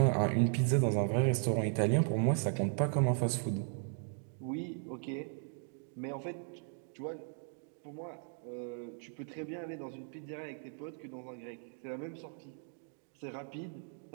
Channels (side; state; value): left; silent; 53 dB below the other